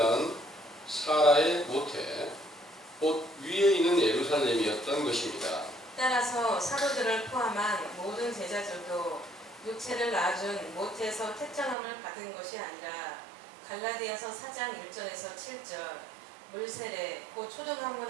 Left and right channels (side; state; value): left; drops out; at 11.8 s